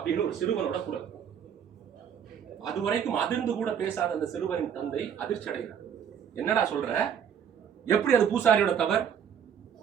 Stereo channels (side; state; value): left; quieter; 8.2 dB